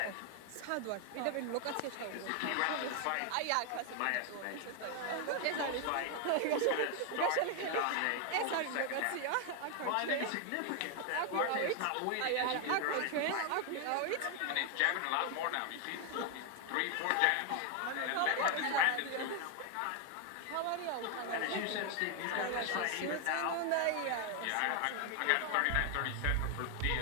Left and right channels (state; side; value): different; both; correlation 0.01